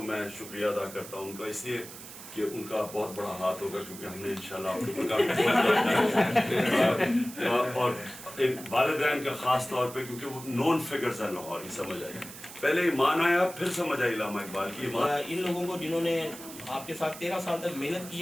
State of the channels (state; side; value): noise; right; hiss, 14 dB below the sound